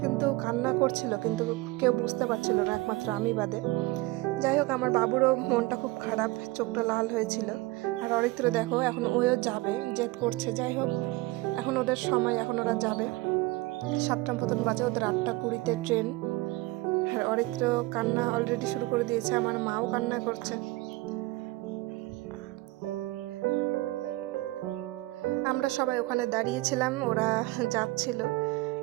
কিন্তু কান্না করছিল, কিন্তু কেউ বুঝতে পারছিল না, একমাত্র আমি বাদে। যাই হোক, আমার বাবুরও মনটা খুব খারাপ, চোখটা লাল হয়েছিল। আর অরিত্র দেখো এখন ওও যাবে, জেদ করছে। যাই হোক, এখন ওদের সময়, এখন ওরা যাবে। 7টা মতন বাজে, ওদের 8:20-তে ট্রেন। আর অরিত্র কান্না অলরেডি শুরু করে দিয়েছে, আমার মাও কান্না করছে। আমরা সবাই ওখানে দাঁড়িয়েছিলাম, ওরা যাচ্ছিল।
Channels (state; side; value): quieter; left; 20.7 dB